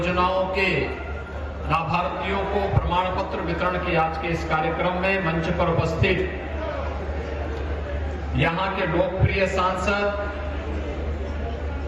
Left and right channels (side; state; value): both; identical; correlation 1.00